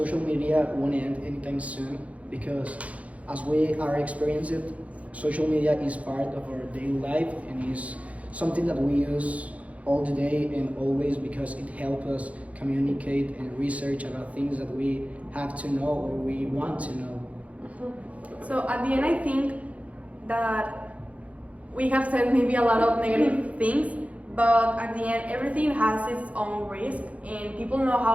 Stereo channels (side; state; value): left; late; 0.066 ms